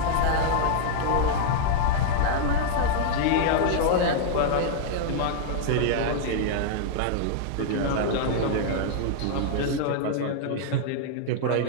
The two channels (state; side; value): different; both; correlation -0.01